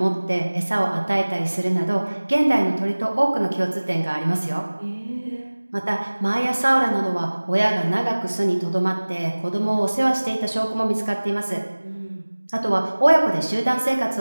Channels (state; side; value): inverted; both; correlation -1.00